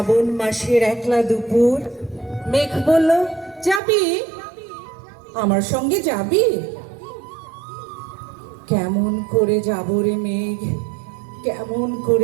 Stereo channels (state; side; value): drops out; left; at 3.8 s